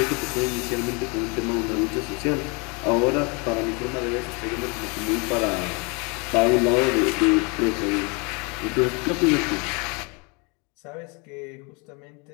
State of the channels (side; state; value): right; quieter; 31.3 dB